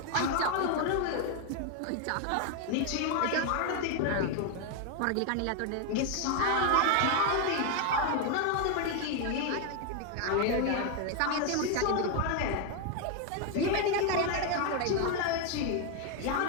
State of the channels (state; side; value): different; both; correlation 0.01